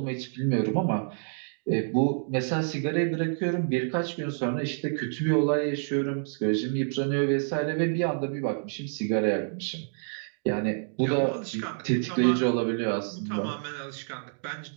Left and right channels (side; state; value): left; silent; digital silence